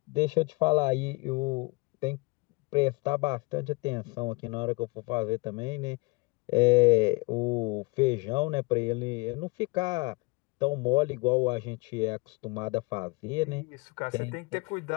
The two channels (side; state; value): right; quieter; 27.1 dB